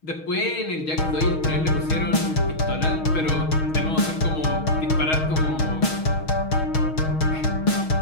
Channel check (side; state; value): right; late; 6.3 ms